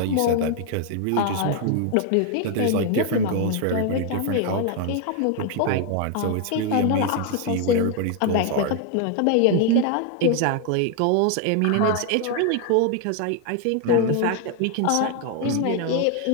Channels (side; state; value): both; different; correlation 0.00